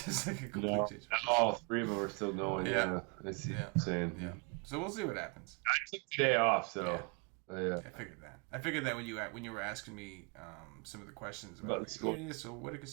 just like a complete change of pace. All three of them are still going. Yeah. I see what you're saying. Yeah. So we'll see what happens. I took today off, so I figured that. I figured that when you were asking me some of the questions about so what did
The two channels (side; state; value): left; quieter; 32.8 dB